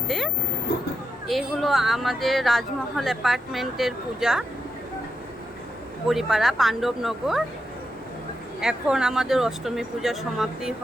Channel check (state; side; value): normal; both; correlation 0.85